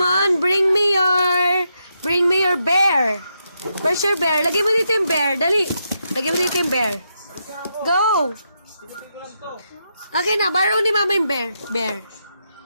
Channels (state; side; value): inverted; both; correlation -0.82